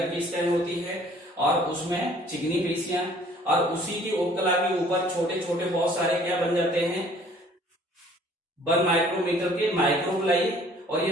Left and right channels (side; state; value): both; normal; correlation 0.55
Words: की स्कैन होती है और उसमें चिकनी पेशियां, और उसी की उपकला के ऊपर छोटे छोटे बहुत सारे क्या बन जाते हैं, 1 माइक्रोमीटर के माइक्रोबिलाई। और